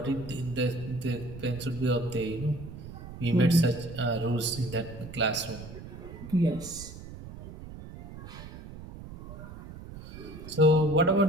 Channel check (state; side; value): noise; right; rumble, 13 dB below the sound